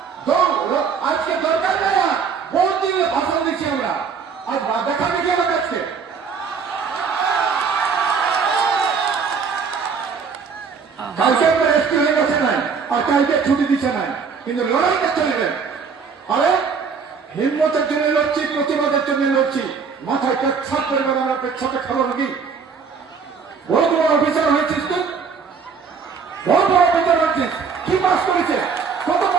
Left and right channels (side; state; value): left; quieter; 5.8 dB